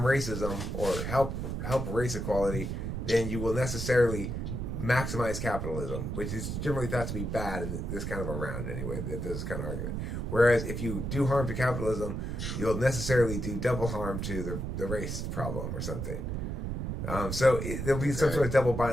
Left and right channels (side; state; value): right; noise; rumble, 3 dB below the sound